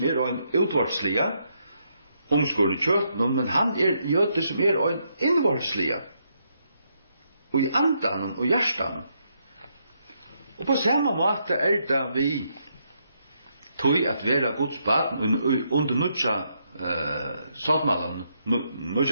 en utvartslige, omskåren i kjøtten, men han jøde som en innvartslige. Og i andan og hjertan. Og på samme måte det vi tog at vera Guds barn under nødja såtmalen,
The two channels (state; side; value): inverted; both; correlation -0.77